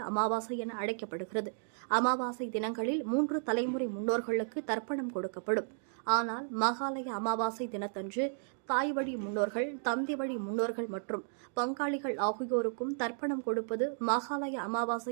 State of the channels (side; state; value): left; silent; digital silence